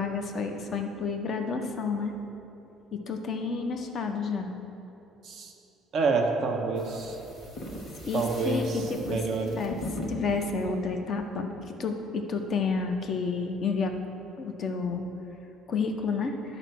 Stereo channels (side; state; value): both; normal; correlation 0.57